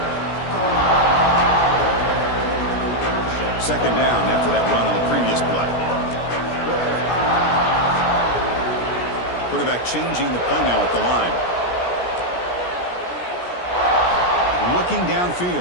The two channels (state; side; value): late; right; 17 ms